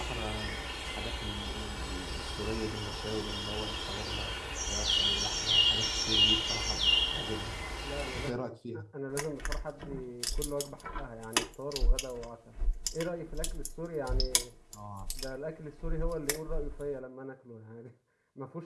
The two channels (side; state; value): both; identical; correlation 1.00